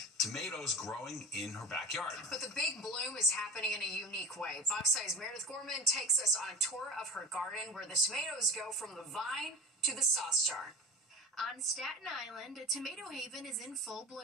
tomatoes growing in her backyard. But the big bloom is happening in a unique way. Fox 5's Meredith Gorman takes us on a tour of her garden where the tomatoes go from the vine to the sauce jar. On Staten Island, a tomato haven is in full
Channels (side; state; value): both; normal; correlation 0.32